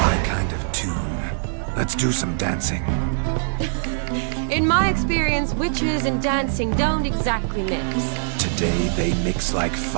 kind of tune. Let's do some dancing. In my experience, witches and dancing don't exactly mix. Today they mix like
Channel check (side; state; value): left; silent; 56 dB below the other